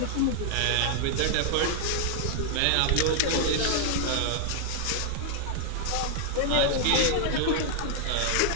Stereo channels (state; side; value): different; both; correlation -0.01